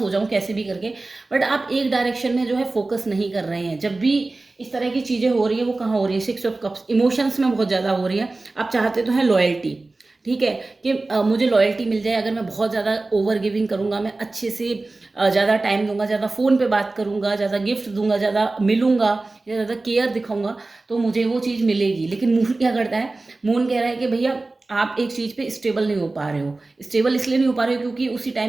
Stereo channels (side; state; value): left; quieter; 3.3 dB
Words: हो जाऊं कैसे भी करके। बट आप एक डायरेक्शन में जो है फोकस नहीं कर रहे हैं। जब भी इस तरह की चीज़ें हो रही है, वो कहाँ हो रही है, 6 ऑफ कप्स, इमोशंस में बहुत ज़्यादा हो रही है। आप चाहते तो हैं लॉयल्टी, ठीक है, कि मुझे लॉयल्टी मिल जाए। अगर मैं बहुत ज़्यादा ओवर गिविंग करूँगा, मैं अच्छे से ज़्यादा टाइम दूंगा, ज़्यादा फ़ोन पे बात करूँगा, ज़्यादा गिफ्ट दूंगा, ज़्यादा मिलूंगा या ज़्यादा केयर दिखाऊंगा, तो मुझे वो चीज़ मिलेगी। लेकिन मून क्या करता है, मून कह रहा है कि भैया आप एक चीज़ पे स्टेबल नहीं हो पा रहे हो। स्टेबल इसलिए नहीं हो पा रहे हो क्योंकि उसी